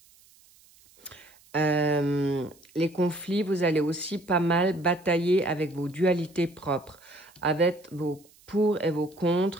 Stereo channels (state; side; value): noise; right; hiss, 28 dB below the sound